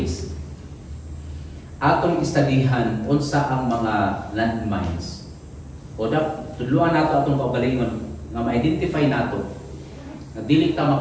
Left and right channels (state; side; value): identical; both; correlation 1.00